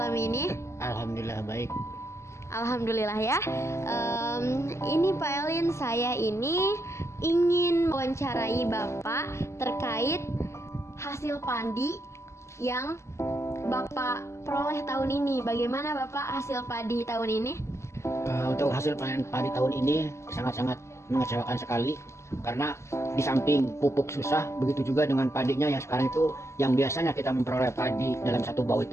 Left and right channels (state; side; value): late; right; 0.13 ms